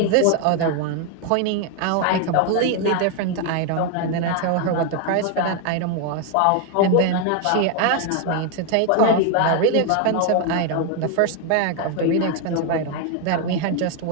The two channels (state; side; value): different; both; correlation 0.01